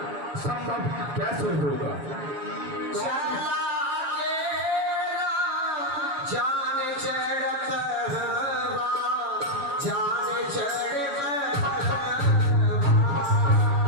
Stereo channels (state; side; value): late; left; 7.1 ms